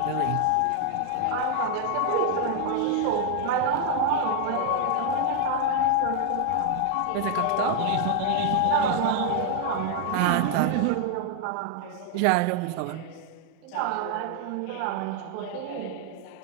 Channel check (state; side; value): different; both; correlation 0.00